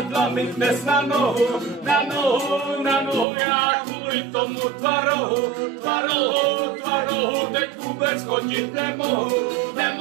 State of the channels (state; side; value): drops out; left; at 3.2 s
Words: mi dnes na nohu. Já kvůli tomu tvaru teď vůbec chodit nemohu.